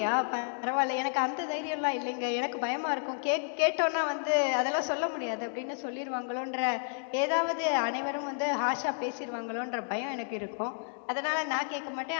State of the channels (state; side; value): silent; right; digital silence